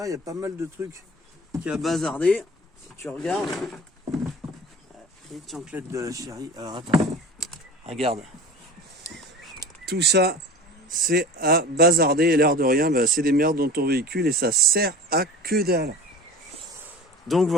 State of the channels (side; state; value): both; normal; correlation 0.37